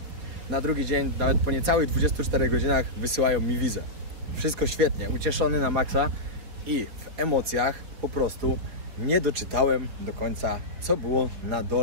Na drugi dzień, nawet po niecałych 24 godzinach wysyłają mi wizę. Wszystko świetnie, ucieszony na maksa i w emocjach po prostu nie doczytałem do końca, co było na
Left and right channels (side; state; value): left; late; 4.8 ms